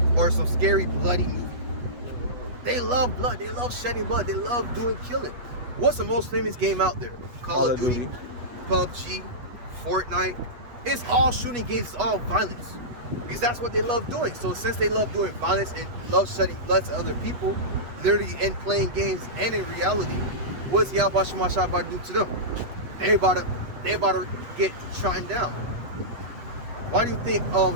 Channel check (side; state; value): left; late; 8.2 ms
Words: or some scary bloody movie. They love blood. They love shedding blood. They love doing killing. What's the most famous game out there? Call of Duty, PUBG, Fortnite. It's all shooting games. It's all violence, because that's what they love doing. So since they love doing violence and love shedding blood to other people, literally in playing games and in reality, what's YAHAWASHI about to do to them? They about to get trodden down. Why do you think